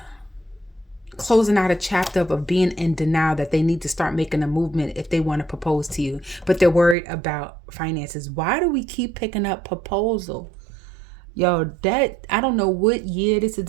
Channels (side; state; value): left; drops out; at 7.0 s